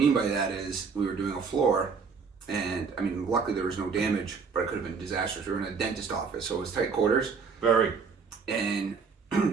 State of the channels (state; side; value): quieter; left; 5.4 dB